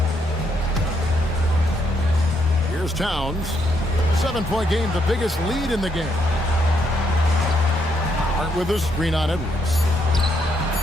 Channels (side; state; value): both; normal; correlation 0.75